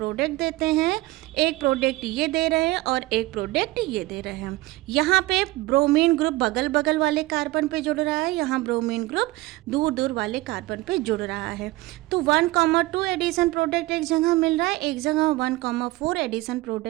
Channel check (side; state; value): left; quieter; 19.7 dB